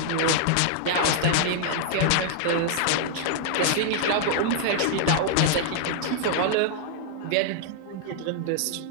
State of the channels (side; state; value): both; different; correlation 0.00